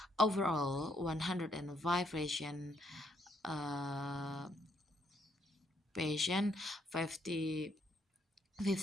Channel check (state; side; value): normal; both; correlation 0.72